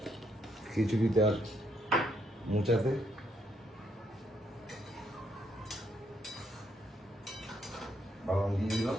খিচুড়িতে আর মোচাতে। বাদাম দিয়ে দিলাম।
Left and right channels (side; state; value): both; normal; correlation 0.74